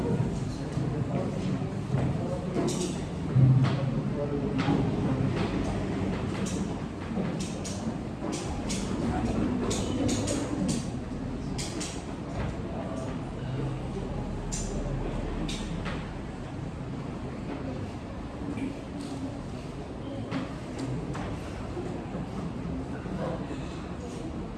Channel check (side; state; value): both; identical; correlation 1.00